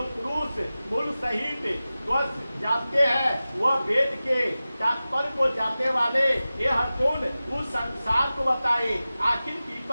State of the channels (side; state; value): both; inverted; correlation -0.96